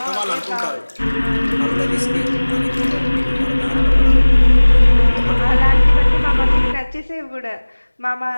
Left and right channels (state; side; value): inverted; both; correlation -1.00